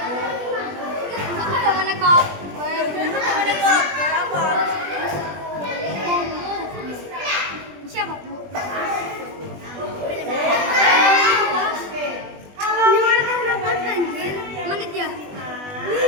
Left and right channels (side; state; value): left; late; 20 ms